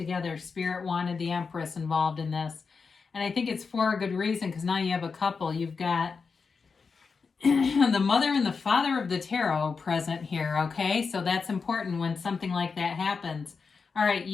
Spirit wanted the Empress involved in this. And I think it's for a good reason because now you have a couple. You've got the mother and the father of the tarot present here, okay? So that's important when something like that happens. All right,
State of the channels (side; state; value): right; quieter; 5.1 dB